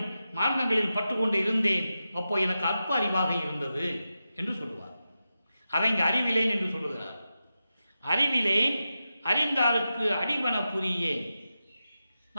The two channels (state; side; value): inverted; both; correlation -0.91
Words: மார்க்கங்களில் பற்றுக்கொண்டு இருந்தேன். அப்போ எனக்கு அற்ப அறிவாக இருந்தது என்று சொல்லுவார். அதை இங்கு அறிவிலேன் என்று சொல்லுகிறார். அறிவிலேன் அறிந்தாருக்கு அடிவன புரியேன்.